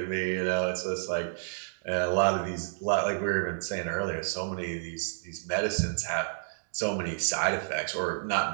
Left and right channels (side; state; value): left; silent; digital silence